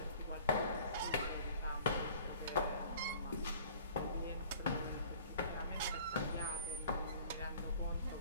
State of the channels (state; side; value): inverted; both; correlation -0.49